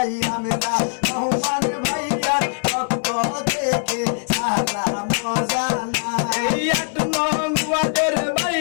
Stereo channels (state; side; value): silent; right; 65 dB below the other